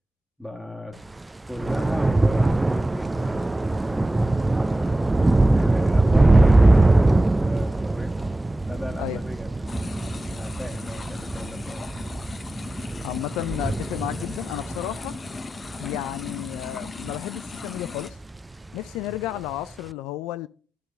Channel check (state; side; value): normal; both; correlation 0.94